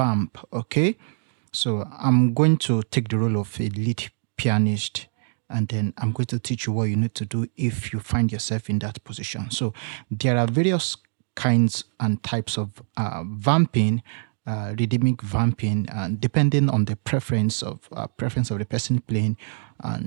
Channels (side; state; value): left; silent; digital silence